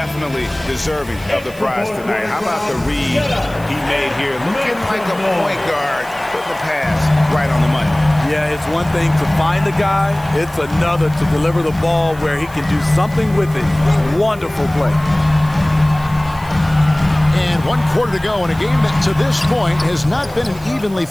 deserving of the prize tonight. How about the read he made here? Looking like a point guard, putting the pass right on the money. Yeah, it's one thing to find the guy. It's another to deliver the ball where he can do something with it. Wonderful play. And 1 quarter to go in a game that to this point has not been an evenly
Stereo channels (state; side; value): noise; right; hiss, 22 dB below the sound